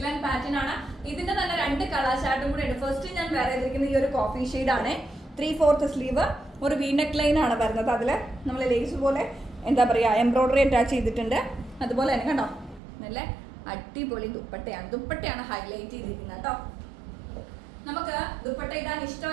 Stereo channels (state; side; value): drops out; left; at 12.8 s